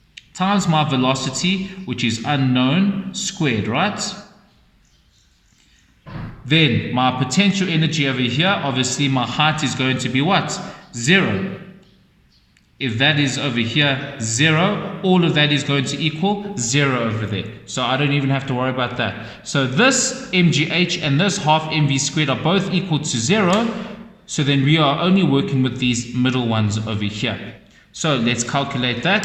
times my velocity, which is unknown, squared, right? Then my potential energy over here, obviously my height is going to be what? 0. If that is over here 0, all of that is going to equal 0 over there. So I don't even have to worry about that. So this mgh and this half mv squared are both equal to 0. So then we are only working with these middle ones over here. So let's calculate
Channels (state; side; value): identical; both; correlation 1.00